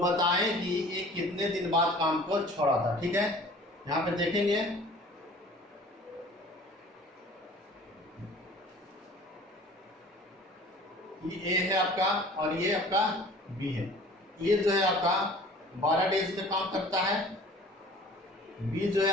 कि ये कितने दिन बाद काम को छोड़ा था। ठीक है, यहां पे देखेंगे ये ए है आपका और ये आपका बी है। ये जो है आपका 12 डेज में काम करता है, बी जो है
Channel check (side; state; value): both; normal; correlation 0.47